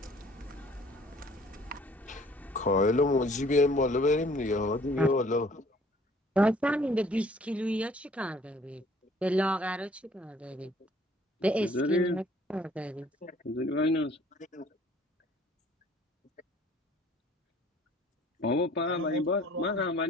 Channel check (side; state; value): both; normal; correlation 0.56